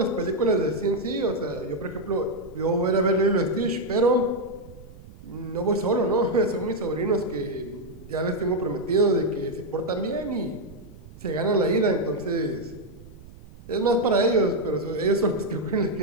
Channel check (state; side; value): noise; right; rumble, 19 dB below the sound